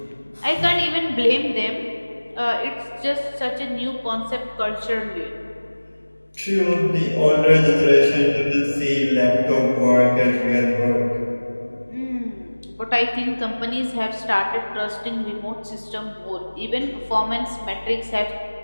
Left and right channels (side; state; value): both; inverted; correlation -1.00